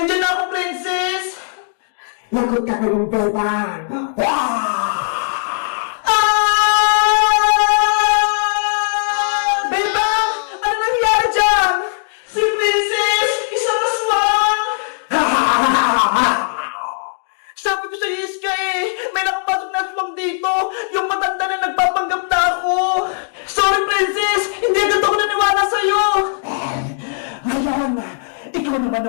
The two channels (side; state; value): right; silent; digital silence